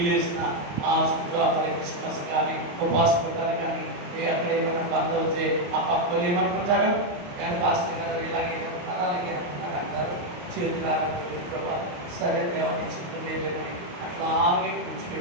వేసిన ఆ శుక్రవారం క్రిస్మస్ కానీ ఉపవాస పుట్టాలు కానీ అక్కడ ఏమైనా బంద్ అవుతే ఆ పక్క వాళ్ళు ఏమనుకుంటారు, కానీ పాస్టర్ గారు ఇలాగే అలాగే అంటారు. చేతులారా ప్రభావ సరే దేవుని చిత్తం లేదని అట్లాగే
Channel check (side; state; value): left; late; 28 ms